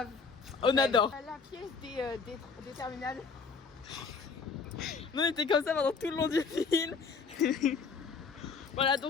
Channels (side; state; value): right; quieter; 5.1 dB